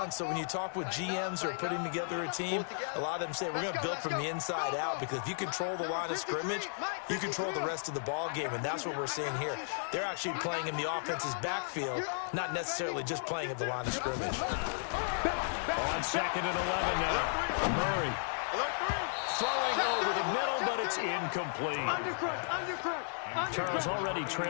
So when you talk with GMs who are putting together a team, a lot of them say, we're going to build from the inside out, because if you control the line of scrimmage, you control the rest of the ball game, and that's what we're seeing here. They're actually playing in the offense's backfield, not necessarily just playing at the line of scrimmage. On 2nd and 11 now. Murray throwing over the middle, but it's incomplete. Charles, already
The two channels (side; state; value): right; silent; digital silence